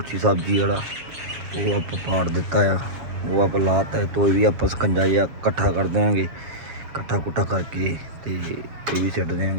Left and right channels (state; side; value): late; left; 7.3 ms